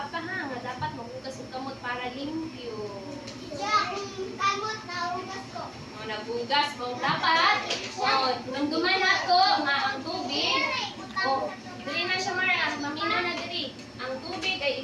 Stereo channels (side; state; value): both; identical; correlation 1.00